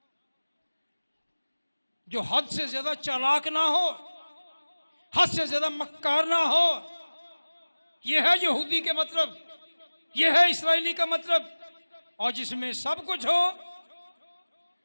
जो हद से ज्यादा चालाक ना हो, हद से ज्यादा मक्कार ना हो। यह है यहूदी के मतलब, यह है इस्राएली का मतलब। और जिसमें सब कुछ हो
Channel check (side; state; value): both; inverted; correlation -1.00